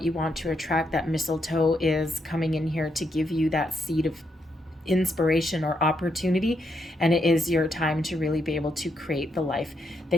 you want to attract. That mistletoe is coming in here to give you that seed of inspiration or opportunity, and it is your time to really be able to create the life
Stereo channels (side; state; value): both; normal; correlation 0.79